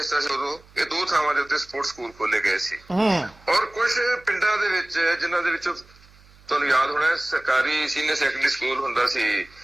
ਸੀ ਉਦੋਂ, ਇਹ 2 ਥਾਵਾਂ ਦੇ ਉੱਤੇ ਸਪੋਰਟਸ ਸਕੂਲ ਖੋਲੇ ਗਏ ਸੀ। ਔਰ ਕੁਝ ਪਿੰਡਾਂ ਦੇ ਵਿੱਚ ਜਿਨ੍ਹਾਂ ਦੇ ਵਿੱਚੋਂ ਤੁਹਾਨੂੰ ਯਾਦ ਹੋਣਾ ਸਰਕਾਰੀ ਸੀਨੀਅਰ ਸੈਕੰਡਰੀ ਸਕੂਲ ਹੁੰਦਾ ਸੀ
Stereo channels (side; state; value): right; noise; hum, 26 dB below the sound